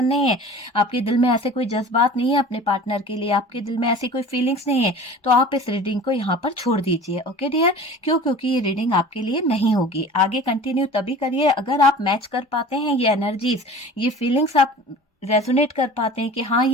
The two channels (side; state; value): both; normal; correlation 0.41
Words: नहीं है, आपके दिल में ऐसे कोई जज्बात नहीं है अपने पार्टनर के लिए, आपके दिल में ऐसी कोई फीलिंग्स नहीं है, तो आप इस रीडिंग को यहाँ पर छोड़ दीजिए। ओके डियर, क्यों? क्योंकि ये रीडिंग आपके लिए नहीं होगी। आगे कंटिन्यू तभी करिए अगर आप मैच कर पाते हैं ये एनर्जीज, ये फीलिंग्स आप रेजोनेट कर पाते हैं कि हाँ